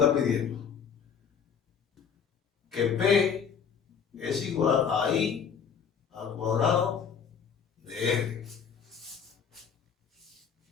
pidiendo. Que P es igual a I al cuadrado de R.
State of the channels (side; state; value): right; quieter; 7.0 dB